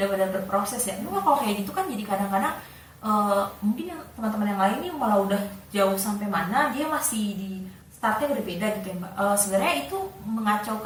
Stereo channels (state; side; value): identical; both; correlation 1.00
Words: berproses ya. Nah, kalau kayak gitu kan jadi kadang-kadang mungkin yang teman-teman yang lain nih malah udah jauh sampai mana, dia masih di startnya berbeda gitu ya Mbak. Sebenarnya itu